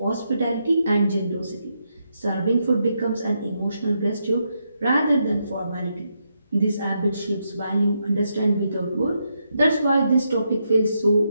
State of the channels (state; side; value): inverted; both; correlation -0.81